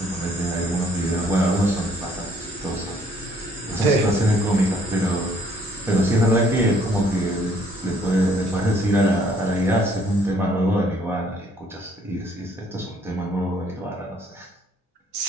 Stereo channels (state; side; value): normal; both; correlation 0.62